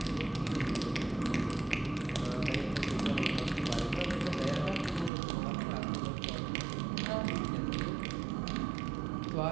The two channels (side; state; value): left; drops out; at 5.1 s